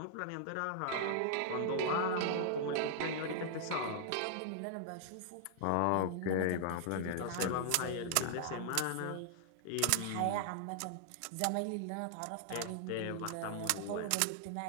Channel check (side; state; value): both; different; correlation -0.01